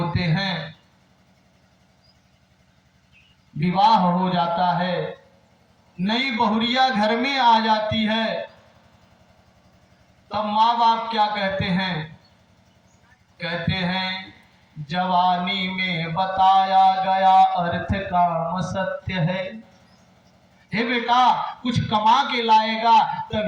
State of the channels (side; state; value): both; identical; correlation 1.00